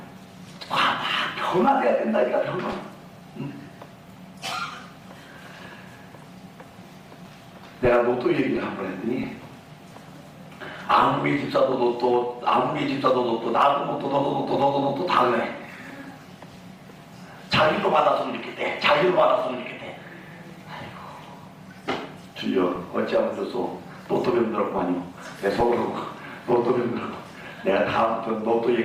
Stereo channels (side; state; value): both; identical; correlation 1.00